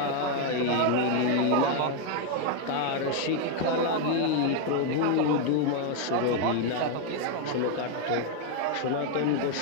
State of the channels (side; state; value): both; different; correlation 0.01